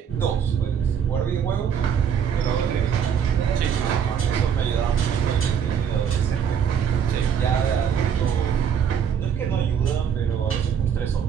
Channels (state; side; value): quieter; left; 7.8 dB